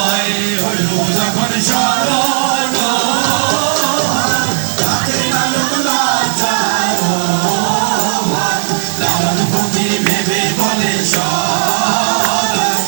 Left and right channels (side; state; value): left; silent; digital silence